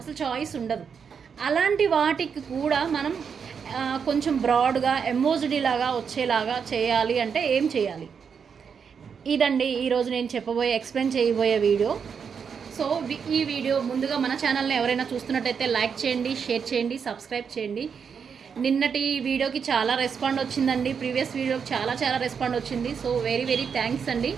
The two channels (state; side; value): quieter; left; 6.6 dB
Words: అసలు చాయిస్ ఉండదు. అలాంటి వాటికి కూడా మనం కొంచెం బ్రాడ్గా ఎంబోజ్డ్ లాగా వచ్చేలాగా చేయాలి అంటే ఏం చేయాలి, ఇదండి ఈరోజు నేను ఎక్స్ప్లెయిన్ చేయబోయే వీడియో. సో ఈ వీడియో ముందుగా మన ఛానల్ని ఎవరైనా చూస్తున్నట్టయితే లైక్ చేయండి, షేర్ చేయండి, సబ్స్క్రైబ్ చేయండి. నిన్నటి వీడియోకి చాలా రెస్పాండ్ వచ్చిందండి, ప్రీవియస్ వీడియోకి చాలా రెస్పాండ్ వచ్చింది. సో వెరీ థ్యాంక్స్ అండి.